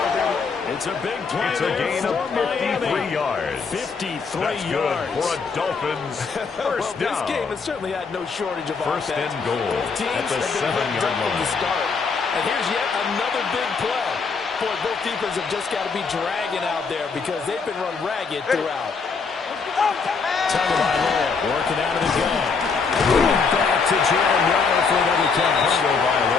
It's a big play. It's a gain of 53 yards. 53 That's good yards. for a Dolphins first This down. game has certainly had no shortage of First offense. and goal Teams at the have been 7-yard hooked up from the line. start. And here's yet another big play. Boy, both defenses have just got to be dragging out there because they've been run ragged throughout. Tagovailoa working out of the gun. Back to Jalen Waddle for another catch.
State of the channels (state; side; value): quieter; right; 5.0 dB